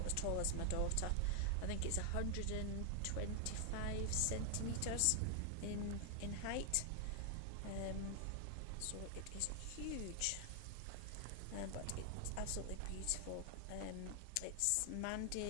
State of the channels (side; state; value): both; different; correlation 0.00